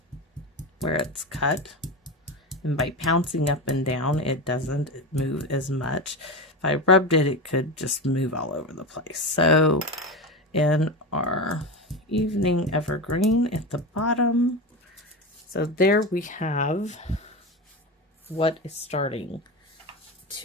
where it's cut. And by pouncing up and down, it doesn't move as much. If I rubbed it, it could just move all over the place. So in our evening evergreen at the bottom, so there we have what is starting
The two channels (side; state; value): both; normal; correlation 0.21